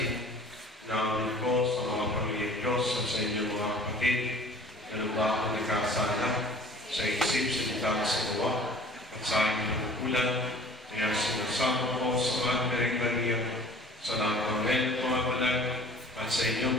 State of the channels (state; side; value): normal; both; correlation 0.48